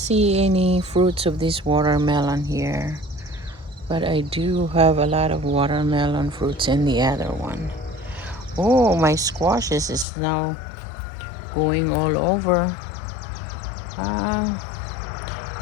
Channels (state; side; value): drops out; right; at 10.1 s